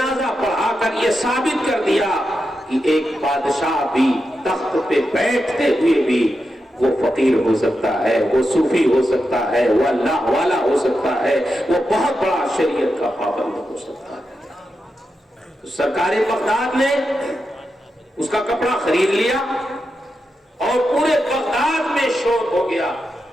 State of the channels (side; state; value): both; normal; correlation 0.88